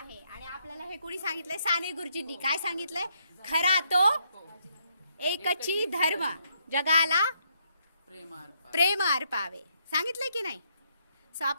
आणि आपल्याला हे कोणी सांगितलंय? साने गुरुजींनी. काय सांगितलंय? खरा तो एकची धर्म, जगाला प्रेमार्पण. प्रेम अर्पावे. सांगितलंय की नाही? सो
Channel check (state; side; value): inverted; both; correlation -0.74